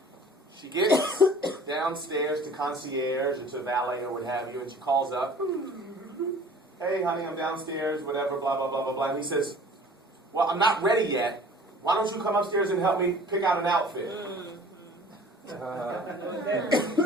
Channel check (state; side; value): normal; both; correlation 0.47